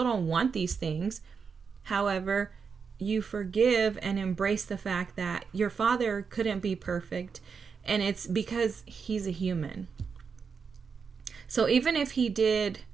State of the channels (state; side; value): quieter; left; 5.8 dB